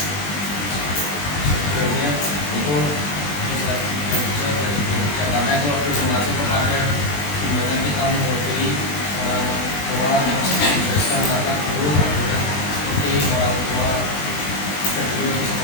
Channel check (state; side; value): late; right; 21 ms